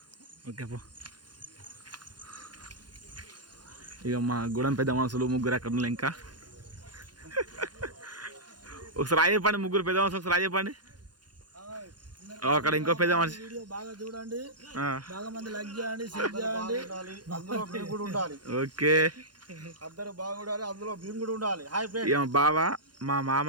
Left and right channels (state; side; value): late; left; 0.70 ms